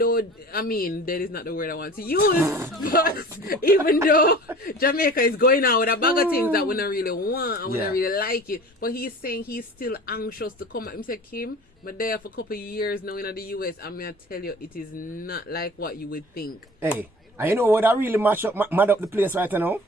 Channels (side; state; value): both; normal; correlation 0.41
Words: dead is not the word I want to use, but even though Jamaica is going out with a bag of things that we don't really want and we don't really like it, but he's saying he's still anxious to come back. He said, Kim, but there for a couple of years now in the US, I'm going to tell you, it is not like what you would think. Hey, and you know what I really mad up the place right now?